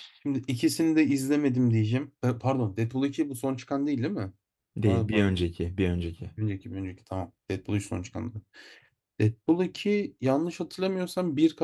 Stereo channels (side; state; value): both; identical; correlation 1.00